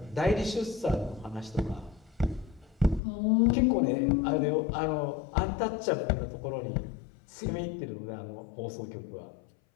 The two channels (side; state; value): right; drops out; at 3.0 s